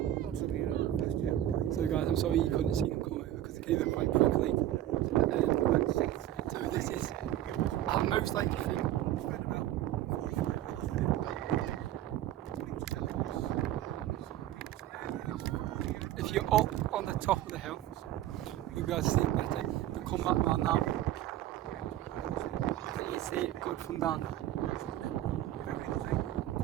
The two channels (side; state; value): left; quieter; 12.9 dB